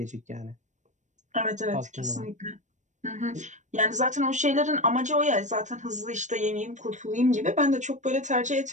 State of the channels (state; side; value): late; left; 0.35 ms